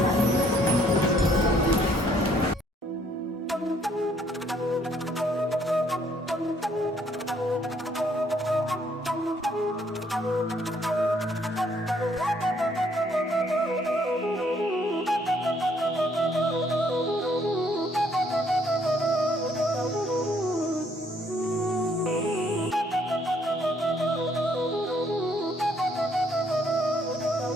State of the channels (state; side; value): normal; both; correlation 0.66